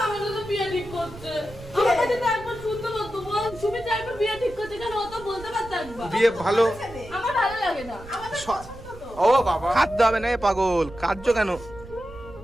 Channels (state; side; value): noise; right; rumble, 17 dB below the sound